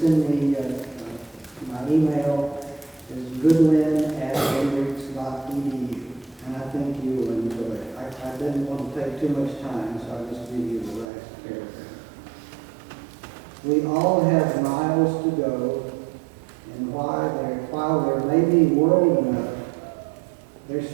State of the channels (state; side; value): drops out; left; at 11.1 s